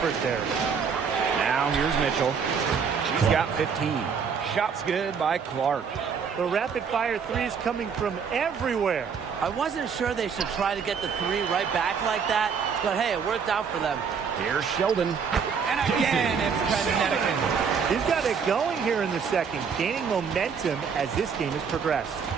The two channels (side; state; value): left; quieter; 6.3 dB